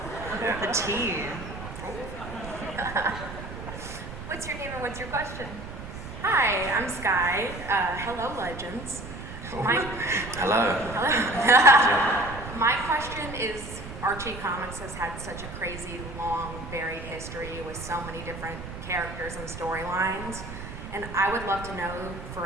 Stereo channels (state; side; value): noise; right; rumble, 10 dB below the sound